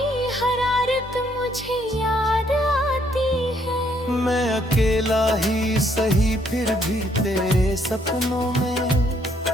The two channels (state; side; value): normal; both; correlation 0.69